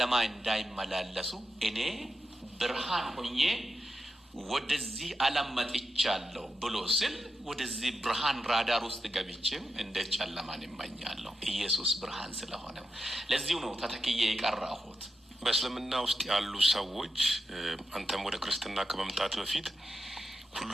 እንዳይመላለሱ እኔ ብርሃን ሆኜ ወደዚህ ዓለም መጥቻለሁ ብሎ ስል ወደዚህ ብርሃን ራዳር ውስጥ ገብቼም እንዴት ጨለማን እመኛለሁ? ኢየሱስ ብርሃን ስለሆነ ለዚሁ ነው ተተክዬ የቀረሁት። በእስልምና ውስጥ ያሉ ሰዎች አንተም ወደ ክርስትና ከመምጣት በፊት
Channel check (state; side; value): normal; both; correlation 0.88